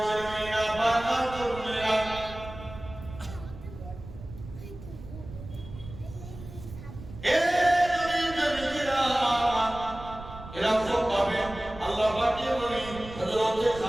ছেলেমেয়েরা বাবা তরুণেরা এরকম ভাবে আল্লাহ পাকের নবী হযরত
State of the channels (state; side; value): noise; right; rumble, 14 dB below the sound